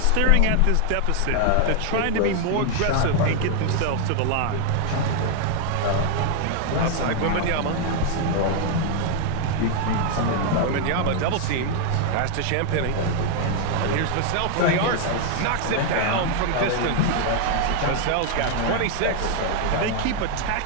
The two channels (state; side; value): different; both; correlation 0.00